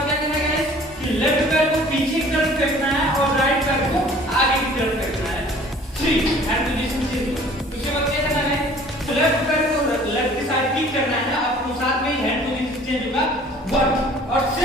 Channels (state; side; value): normal; both; correlation 0.51